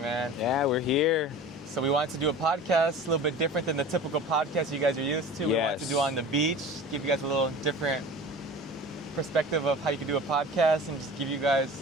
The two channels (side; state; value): both; normal; correlation 0.38